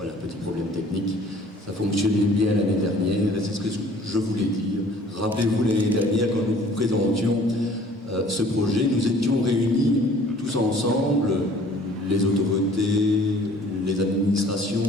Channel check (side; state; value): both; normal; correlation 0.53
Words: petit problème technique. Ça fonctionnait bien l'année dernière, et c'est ce que je voulais dire. Rappelez-vous l'année dernière, quand nous vous présentions ce projet, nous étions réunis tous ensemble, les autorités, les